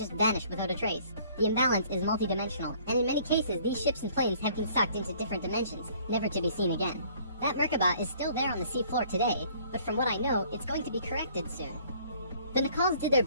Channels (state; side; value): inverted; both; correlation -0.57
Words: vanished without a trace. The imbalance is multidimensional, and in many cases these ships and planes have been sucked into different dimensions, never to be seen again. That Merkaba is still there on the seafloor today, but from what I know, it's going to be corrected soon. The Nicals did their